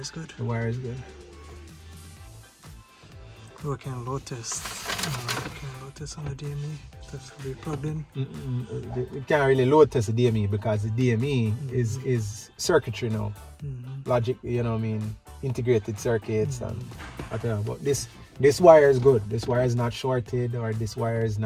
good. The wire is good. Working load test. Working load test on the DME. That's to be plugged in. You can't really load test the DME because the DME is circuitry now. Logic, you know what I mean, integrated circuits and whatever. But this wire is good. This wire is not shorted, or this wire is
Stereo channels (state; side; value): identical; both; correlation 1.00